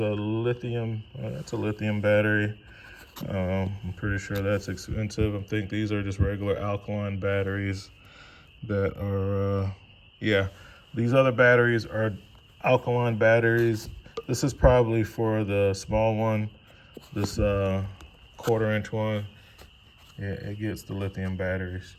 lithium, that's a lithium battery. I'm pretty sure that's expensive. I think these are just regular alkaline batteries that are, yeah, these other batteries are alkaline batteries. This is probably for the small one, this 1/4-inch one. Yeah, it gets the lithium batteries.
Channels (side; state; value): both; identical; correlation 1.00